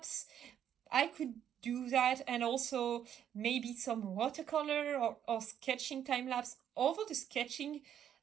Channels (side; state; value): left; quieter; 9.6 dB